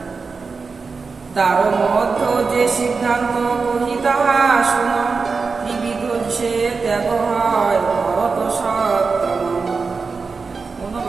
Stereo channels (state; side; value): quieter; left; 4.7 dB